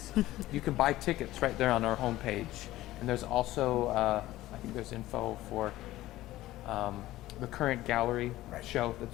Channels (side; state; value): right; quieter; 16.1 dB